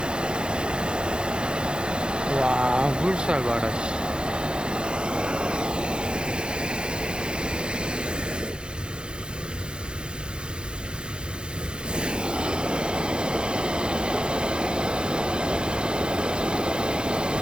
와, 물살 봐라, 씨.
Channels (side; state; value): left; late; 0.049 ms